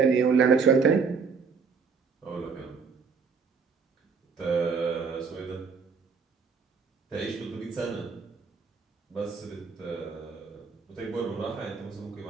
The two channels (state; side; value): quieter; left; 5.4 dB